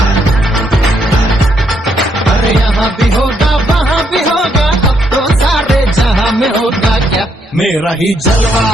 अरे यहाँ भी होगा वहाँ भी होगा, अब तो सारे जहां में होगा क्या मेरा ही जलवा,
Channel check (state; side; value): normal; both; correlation 0.74